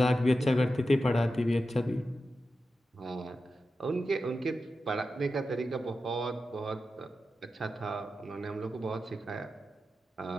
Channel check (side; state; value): both; normal; correlation 0.91